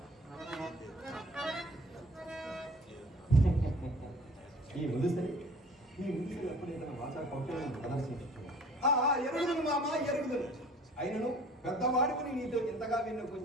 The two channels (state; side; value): normal; both; correlation 0.49